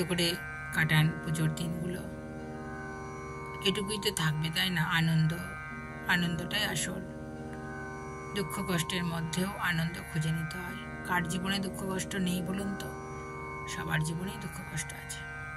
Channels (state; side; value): identical; both; correlation 1.00